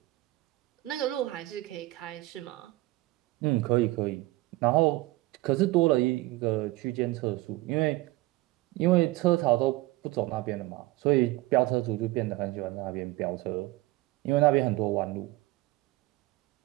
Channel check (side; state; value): left; quieter; 19.5 dB